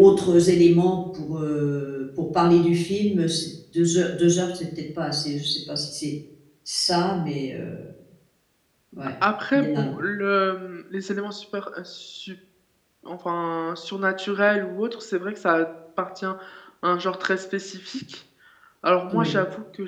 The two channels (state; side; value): identical; both; correlation 1.00